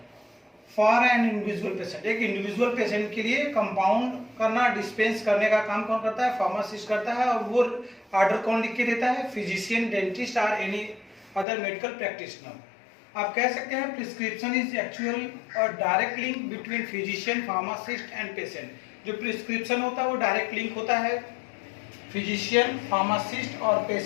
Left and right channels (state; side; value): drops out; right; at 11.5 s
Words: for an individual patient. एक इंडिविजुअल पेशेंट के लिए कंपाउंड करना, डिस्पेंस करने का काम कौन करता है? फार्मासिस्ट करता है। और वो ऑर्डर कौन लिख के देता है? फिजिशियन, डेंटिस्ट और एनी अदर मेडिकल प्रैक्टिशनर। आप कह सकते हैं प्रिस्क्रिप्शन इज एक्चुअल और direct link between physician, pharmacist and patient. जो प्रिस्क्रिप्शन होता है वो डायरेक्ट लिंक होता है फिजिशियन, फार्मासिस्ट और